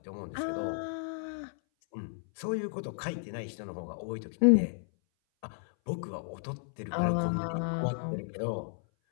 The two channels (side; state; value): right; silent; 56 dB below the other